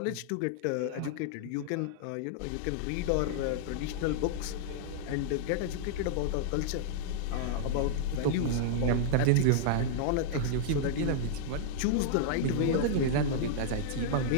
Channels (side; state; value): both; different; correlation -0.01